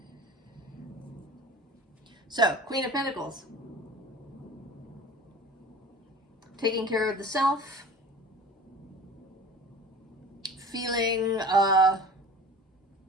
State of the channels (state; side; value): normal; both; correlation 0.40